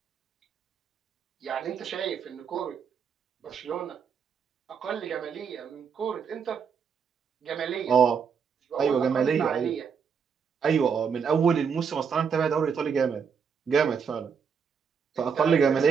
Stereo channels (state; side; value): quieter; left; 6.5 dB